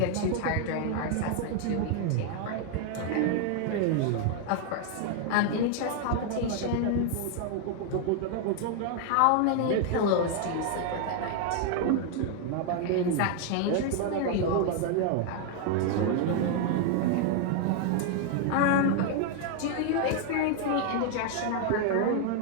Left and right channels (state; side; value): different; both; correlation 0.00